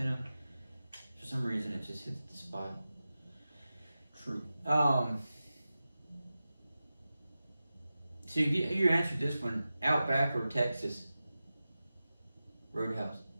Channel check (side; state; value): both; inverted; correlation -0.94